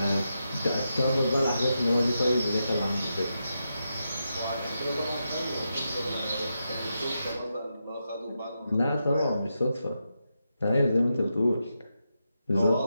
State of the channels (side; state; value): both; inverted; correlation -0.86